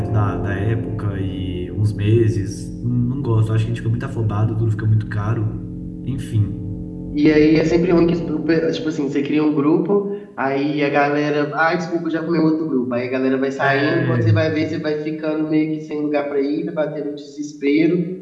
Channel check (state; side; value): identical; both; correlation 1.00